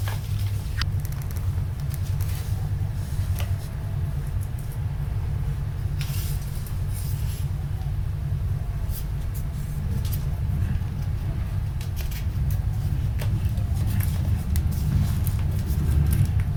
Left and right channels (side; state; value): both; identical; correlation 1.00